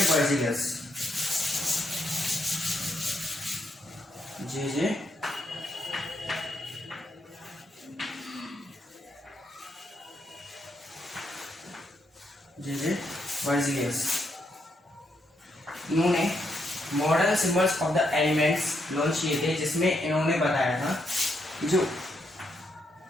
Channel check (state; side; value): normal; both; correlation 0.79